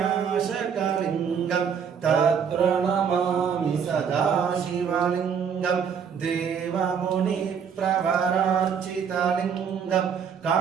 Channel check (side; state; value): left; quieter; 7.1 dB